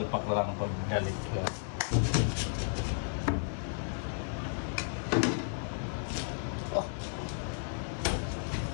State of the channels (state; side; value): silent; right; 55 dB below the other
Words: na lang pag galit. Oh.